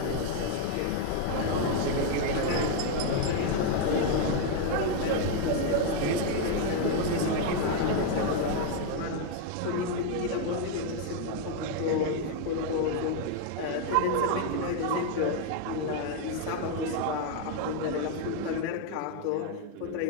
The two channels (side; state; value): both; different; correlation 0.00